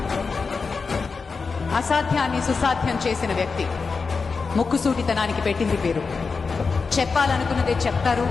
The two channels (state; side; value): quieter; right; 4.8 dB